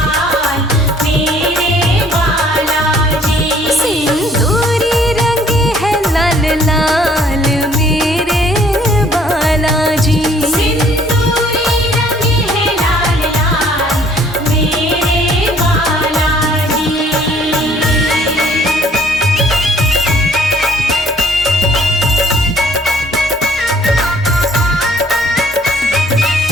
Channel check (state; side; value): normal; both; correlation 0.59